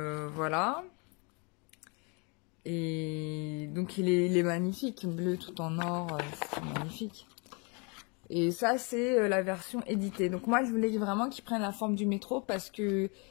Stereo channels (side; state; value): right; quieter; 32.7 dB